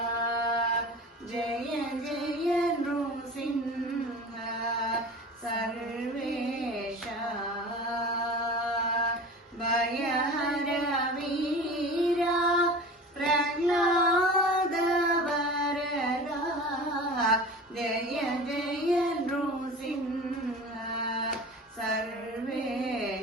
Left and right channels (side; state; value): both; normal; correlation 0.36